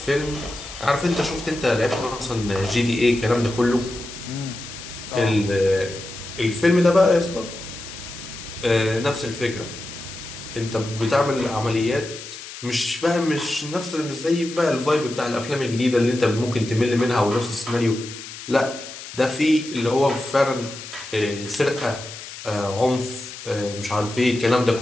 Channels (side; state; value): left; noise; hiss, 12 dB below the sound